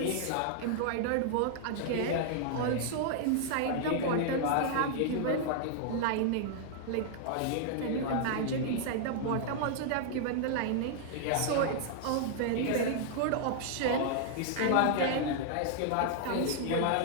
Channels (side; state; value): both; different; correlation -0.01